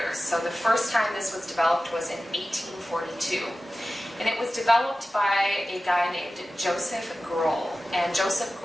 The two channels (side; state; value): both; normal; correlation 0.95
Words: So the first time this was developed was in 1842. And it was developed by a guy named Josef Groll. And Josef